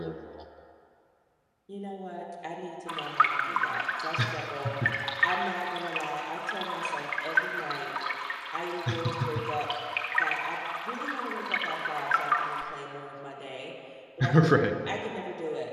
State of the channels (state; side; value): identical; both; correlation 1.00